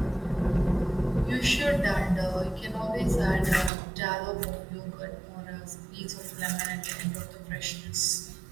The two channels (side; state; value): left; drops out; at 3.7 s